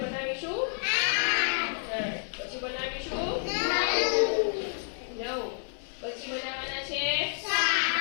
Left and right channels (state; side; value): silent; right; 58 dB below the other